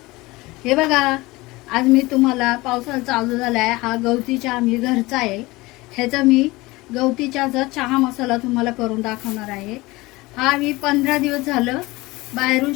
हे बघा, आज मी तुम्हाला पावसाळा चालू झाला आहे, हा गवती चहा मी घरचा आहे. ह्याचा मी गवती चहाचा चहा मसाला तुम्हाला करून दाखवणार आहे. हा मी 15 दिवस झालं बाहेरून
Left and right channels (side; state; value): right; quieter; 21.3 dB